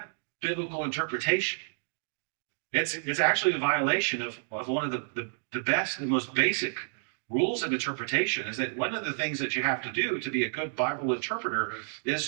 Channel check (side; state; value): left; silent; digital silence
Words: biblical interpretation. It's actually a violation of one of the best and most basic rules of interpretation. Is that one of the things that you have to do to be a good Bible interpreter